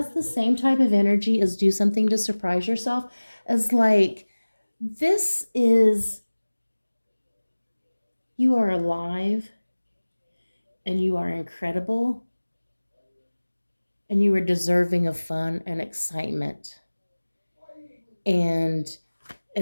the same type of energy as do something to surprise yourself. As like, this is, you are alive and you are incredible and you are deserving of fun and excitement. And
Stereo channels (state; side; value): inverted; both; correlation -1.00